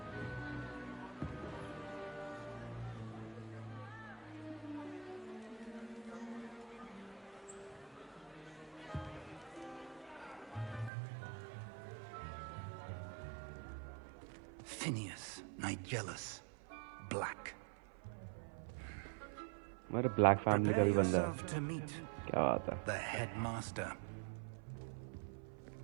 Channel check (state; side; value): drops out; left; at 10.9 s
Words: Phineas, Nigellus, Black. हमारे black family का भी बंदा है. Yourself to meet क्या बात है? the headmaster.